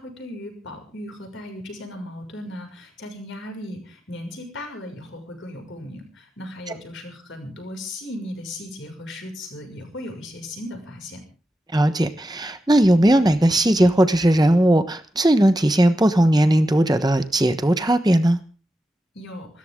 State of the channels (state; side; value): normal; both; correlation 0.90